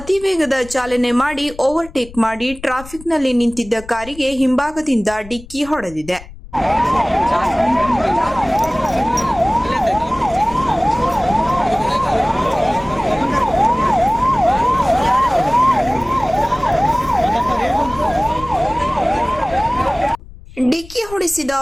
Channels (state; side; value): noise; left; rumble, 18 dB below the sound